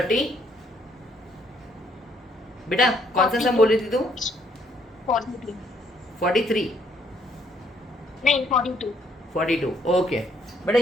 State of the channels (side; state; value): both; normal; correlation 0.68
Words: बेटा कौन सा सम बोल रही थी तुम? 42 43 नहीं 42 42 ओके बेटा